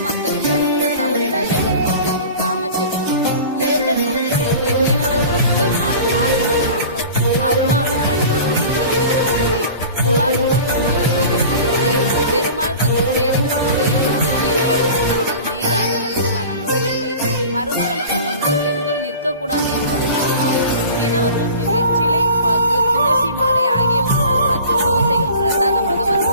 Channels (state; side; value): inverted; both; correlation -0.40